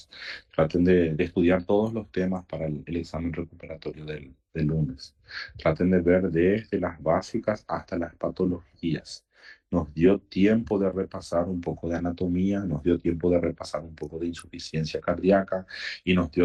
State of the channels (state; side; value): identical; both; correlation 1.00